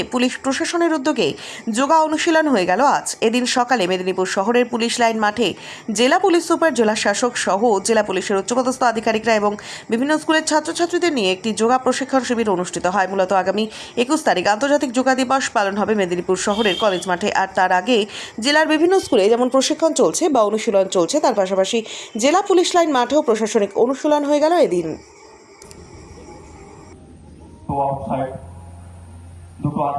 পুলিশ প্রশাসনের উদ্যোগে যোগা অনুশীলন হয়ে গেল আজ। এদিন সকালে মেদিনীপুর শহরের পুলিশ লাইন মাঠে জেলা পুলিশ সুপার, জেলা শাসক সহ জেলা পুলিশের উচ্চপদস্থ আধিকারিকরা এবং বিভিন্ন স্কুলের ছাত্রছাত্রীদের নিয়ে একটি যোগা প্রশিক্ষণ শিবির অনুষ্ঠিত হয়। মূলত আগামী 21 তারিখ আন্তর্জাতিক যোগা দিবস পালন হবে মেদিনীপুর শহরের কলেজ মাঠে। আর তার আগে জেলার বিভিন্ন স্কুলে যেমন প্রশিক্ষণ চলছে বা অনুশীলন চলছে, তার পাশাপাশি জেলা পুলিশ লাইন মাঠেও প্রশাসনিক অনুশীলন হয়ে গেল এদিন। তো আউটসাইড দুটো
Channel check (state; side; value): identical; both; correlation 1.00